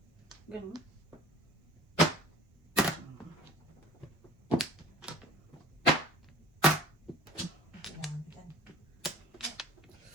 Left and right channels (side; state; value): both; normal; correlation 0.47